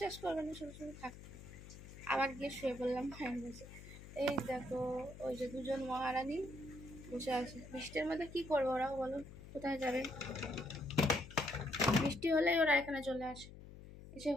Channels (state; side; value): noise; left; hum, 15 dB below the sound